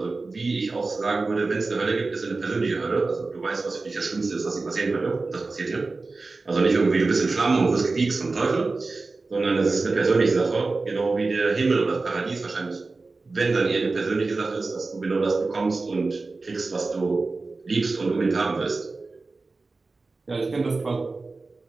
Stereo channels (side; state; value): left; quieter; 3.7 dB